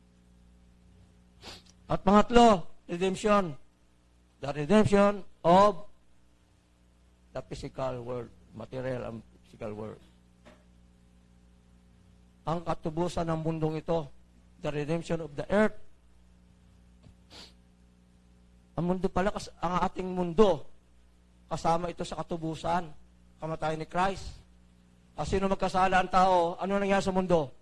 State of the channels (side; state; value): both; identical; correlation 1.00